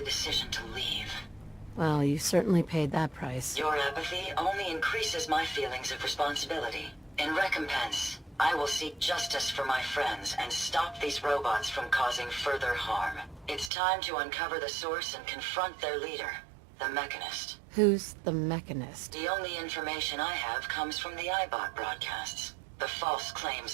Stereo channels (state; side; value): drops out; left; at 13.7 s